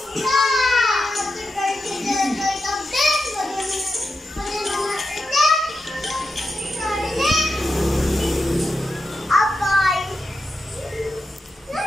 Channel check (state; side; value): normal; both; correlation 0.89